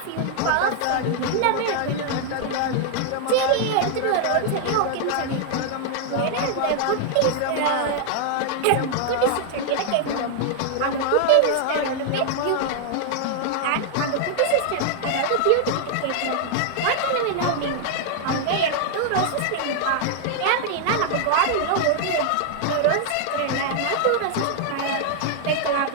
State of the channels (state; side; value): different; both; correlation 0.00